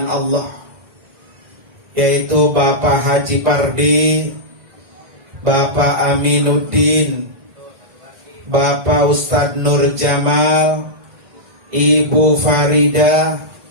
Allah, yaitu Bapak Haji Pardi, Bapak Aminuddin, Bapak Ustadz Nur Jamal, Ibu Farida,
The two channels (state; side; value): late; left; 2.0 ms